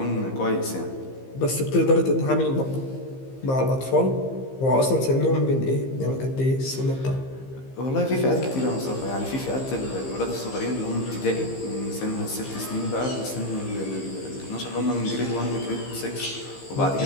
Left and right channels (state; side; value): late; right; 15 ms